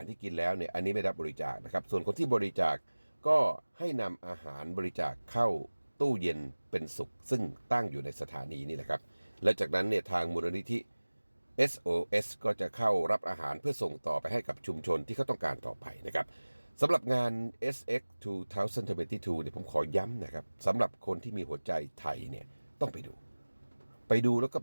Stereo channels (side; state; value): both; inverted; correlation -1.00